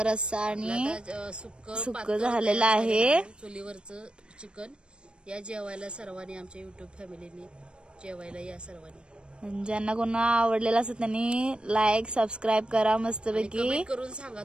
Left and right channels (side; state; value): left; late; 0.055 ms